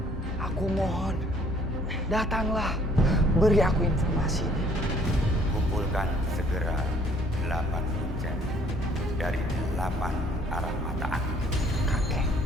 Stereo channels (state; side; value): normal; both; correlation 0.60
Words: aku mohon, datanglah, beri aku informasi. Kumpulkan segera 8 kuncen dari 8 arah mata angin. Kakek,